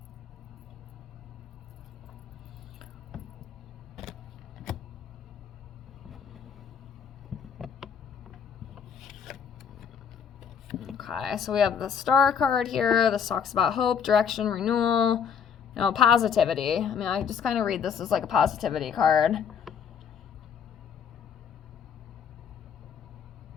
Okay, so we have the Star card here. This talks about hope, direction, renewal, you know, positivity. I mean, I just kind of read this as like a positivity card.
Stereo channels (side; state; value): right; quieter; 7.2 dB